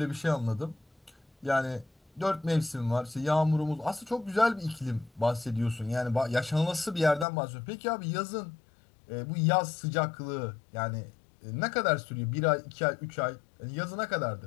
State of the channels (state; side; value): drops out; right; at 7.2 s